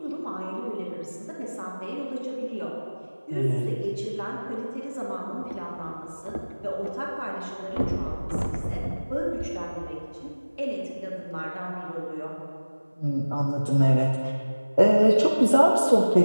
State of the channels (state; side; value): inverted; both; correlation -1.00